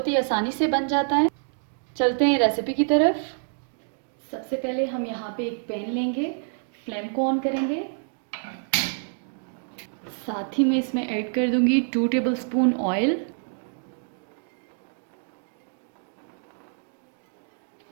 ही आसानी से बन जाता है। चलते हैं रेसिपी की तरफ। सबसे पहले हम यहाँ पे एक पैन लेंगे, फ्लेम को ऑन करेंगे। साथ ही मैं इसमें ऐड कर दूंगी 2 टेबलस्पून ऑयल।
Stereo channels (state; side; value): silent; left; 60 dB below the other